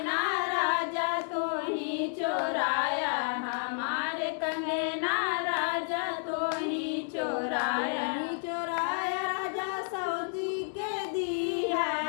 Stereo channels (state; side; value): silent; right; 57 dB below the other